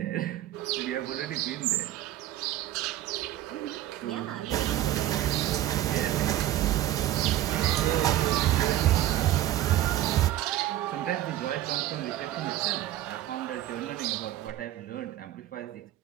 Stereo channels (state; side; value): quieter; left; 13.7 dB